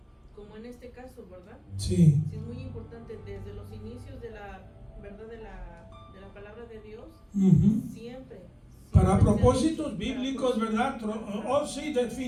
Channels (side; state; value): both; identical; correlation 1.00